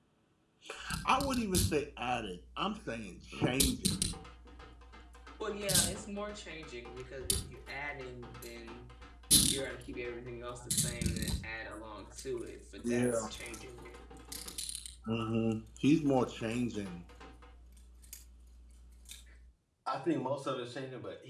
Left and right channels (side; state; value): both; identical; correlation 1.00